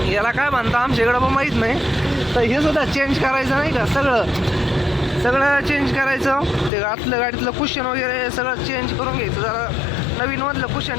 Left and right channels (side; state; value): right; drops out; at 6.7 s